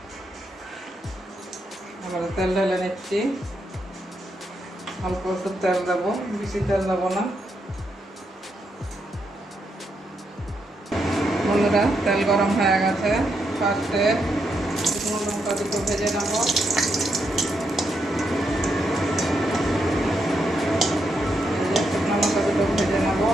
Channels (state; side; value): normal; both; correlation 0.80